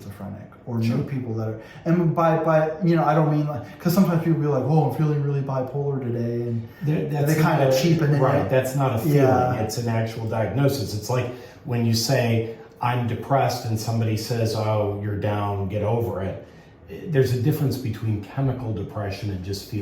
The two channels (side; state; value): both; identical; correlation 1.00